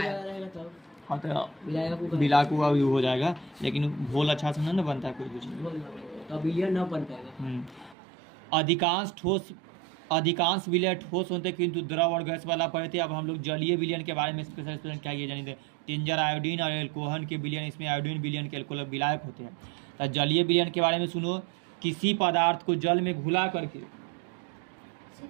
हाँ, तो विलायक हो जाएगा, लेकिन घोल अच्छा से नहीं बनता है कोई कुछ, विलयन न बन पाएगा। अधिकांश विलय ठोस होते हैं, किंतु द्रव और गैस वाला पढ़े थे। अब हम लोग जलीय विलयन के बारे में स्पेशल क्या ये जानिए, टिंजर आयोडीन और एल्कोहल के विलयन, इसमें आयोडीन विलयन के एल्कोहल विलायक होते हैं। तो जलीय विलयन के बारे में सुनो, किसी पदार्थ को जल में घुला करके,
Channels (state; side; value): drops out; left; at 8.0 s